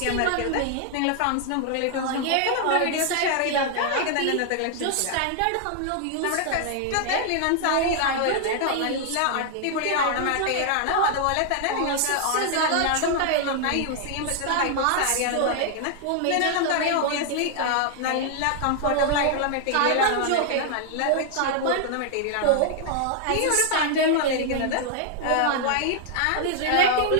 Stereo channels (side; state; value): both; different; correlation 0.00